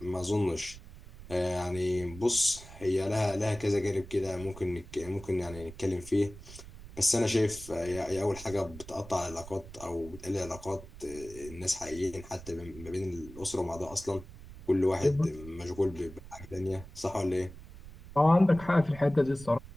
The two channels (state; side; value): noise; right; rumble, 16 dB below the sound